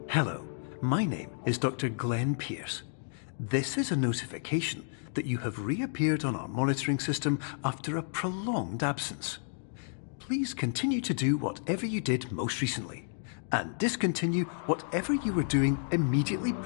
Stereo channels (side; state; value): right; silent; digital silence